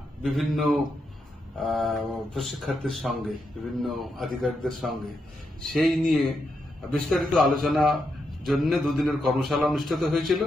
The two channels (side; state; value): both; normal; correlation 0.83